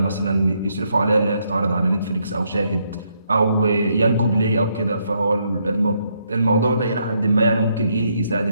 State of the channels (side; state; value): both; inverted; correlation -0.75